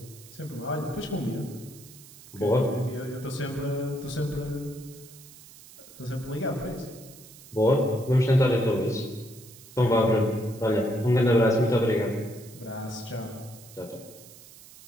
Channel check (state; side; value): noise; right; hiss, 20 dB below the sound